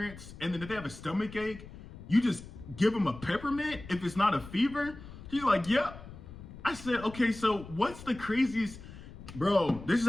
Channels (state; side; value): noise; left; rumble, 15 dB below the sound